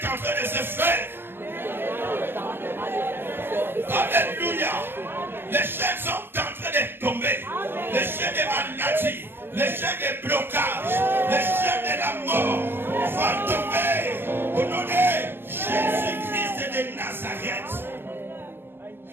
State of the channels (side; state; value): left; late; 0.10 ms